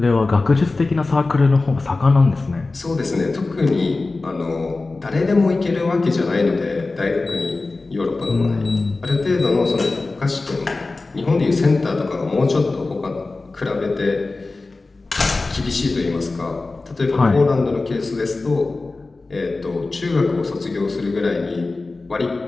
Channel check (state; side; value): quieter; right; 3.5 dB